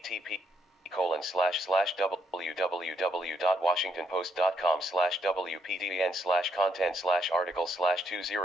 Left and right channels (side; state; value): both; normal; correlation 0.74